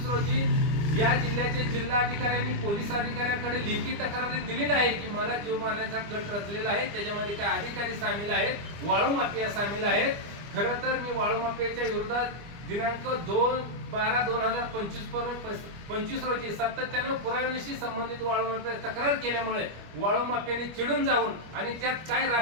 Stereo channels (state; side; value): late; left; 25 ms